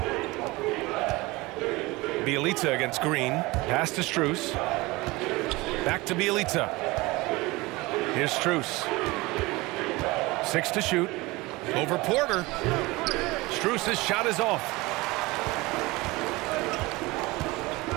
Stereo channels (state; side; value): quieter; left; 22.0 dB